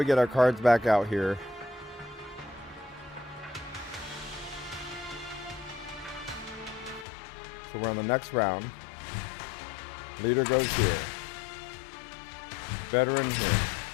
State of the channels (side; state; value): right; drops out; at 7.1 s